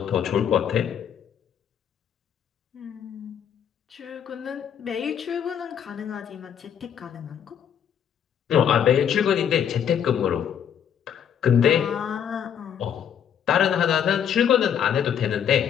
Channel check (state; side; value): quieter; right; 8.6 dB